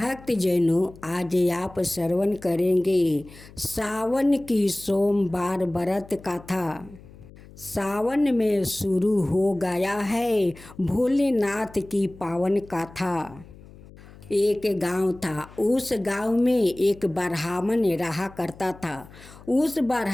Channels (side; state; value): left; noise; hum, 20 dB below the sound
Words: जैनों, आज आप श्रवण करेंगे सावन की सोमवार व्रत कथा। सावन में शुरू हो गया है भोलेनाथ की पावन कथा। एक गांव था, उस गांव में एक ब्राह्मण रहा करता था। उस